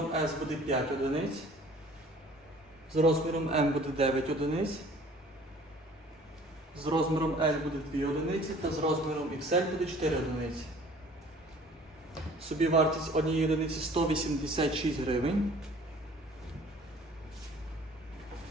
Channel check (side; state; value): both; normal; correlation 0.51